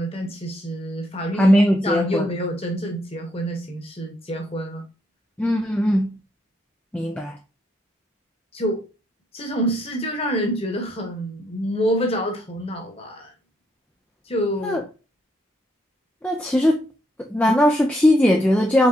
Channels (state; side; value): normal; both; correlation 0.76